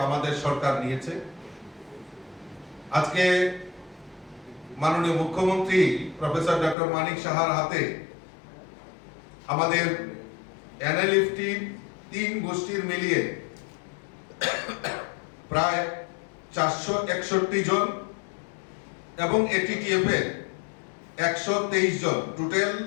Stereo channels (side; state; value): right; drops out; at 6.8 s